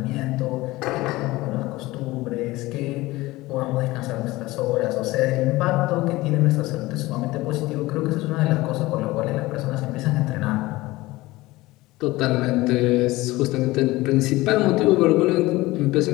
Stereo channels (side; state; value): right; quieter; 19.4 dB